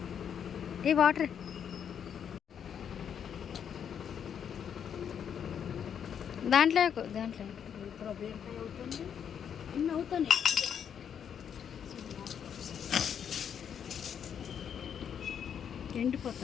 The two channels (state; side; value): quieter; right; 8.2 dB